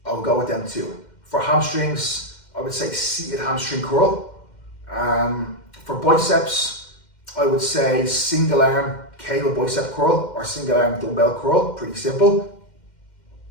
I'll go with them too. For hamstrings, I would say seated hamstring curl. For biceps, I would say single arm cable bicep curl or single arm dumbbell curl, pretty simple.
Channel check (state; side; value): late; right; 2.1 ms